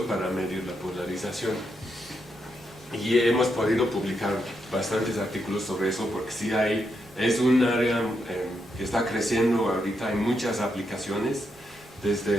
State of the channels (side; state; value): both; normal; correlation 0.81